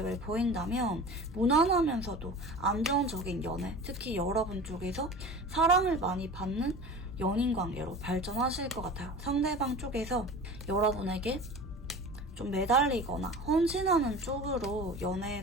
보인다면 무난하면서도 안정적인 연애, 특히 여러분 쪽에서 사랑을 많이 받는 연인 관계로 발전하실 것 같아요. 상대방 쪽에서 여러분에게 좀 매달리거나 헌신하는 쪽으로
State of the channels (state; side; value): normal; both; correlation 0.36